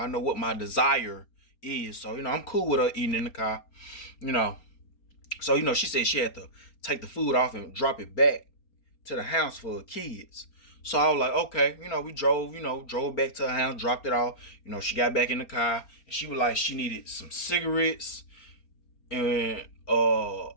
know what my desire is. So I'm cool with her eating in the car. You know. So she said she had to take the food off and drop it back to the house for her kids. So I was like, okay, we drove back to her house, dropped it off. She got back in the car and she was like, she needed some cigarettes and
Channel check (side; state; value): right; late; 4.3 ms